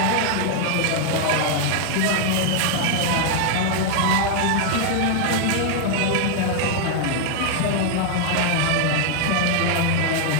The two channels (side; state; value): both; different; correlation 0.00